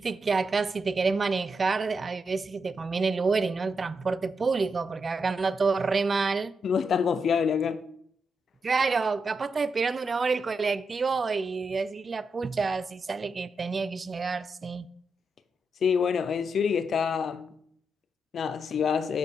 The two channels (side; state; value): both; normal; correlation 0.83